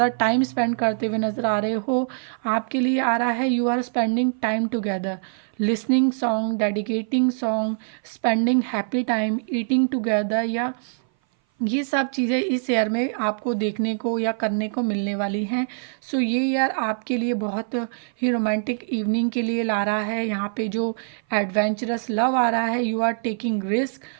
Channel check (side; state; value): left; silent; 58 dB below the other